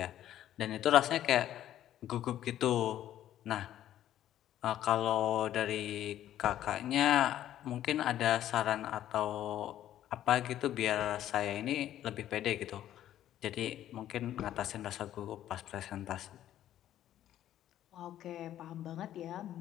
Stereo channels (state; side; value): quieter; right; 12.0 dB